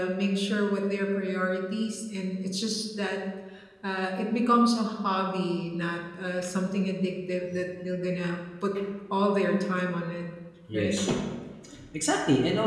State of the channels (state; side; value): identical; both; correlation 1.00